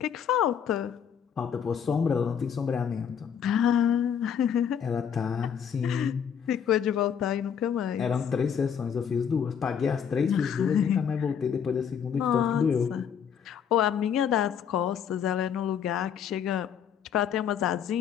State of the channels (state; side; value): quieter; right; 7.9 dB